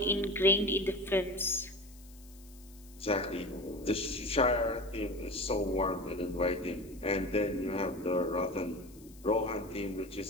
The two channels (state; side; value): noise; left; hiss, 24 dB below the sound